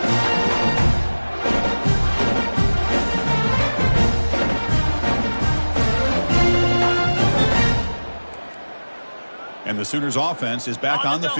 And the Sooners offense is back on the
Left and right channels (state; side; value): inverted; both; correlation -1.00